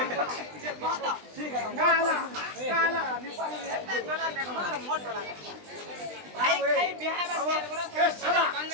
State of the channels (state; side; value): late; left; 20 ms